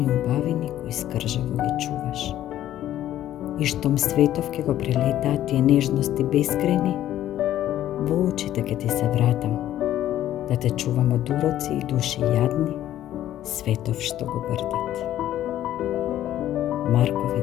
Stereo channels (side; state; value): right; quieter; 12.6 dB